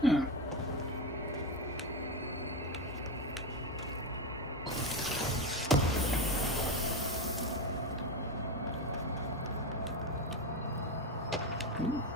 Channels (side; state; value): both; normal; correlation 0.14